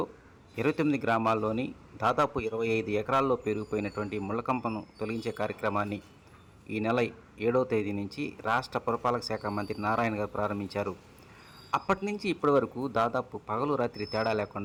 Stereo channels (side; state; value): both; identical; correlation 1.00